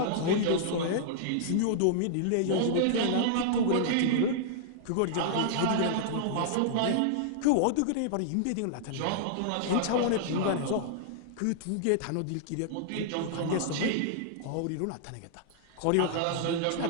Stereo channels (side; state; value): both; different; correlation -0.01